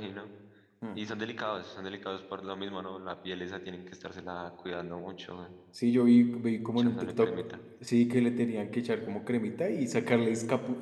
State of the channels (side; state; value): both; identical; correlation 1.00